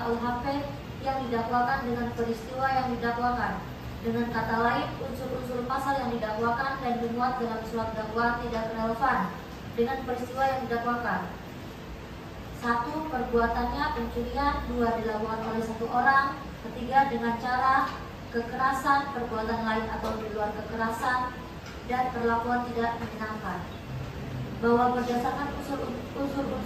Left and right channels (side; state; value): both; identical; correlation 1.00